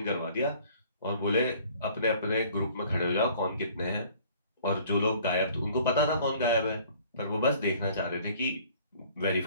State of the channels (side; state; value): both; inverted; correlation -0.54